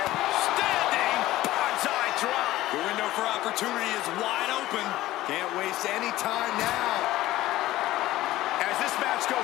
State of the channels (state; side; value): quieter; right; 15.9 dB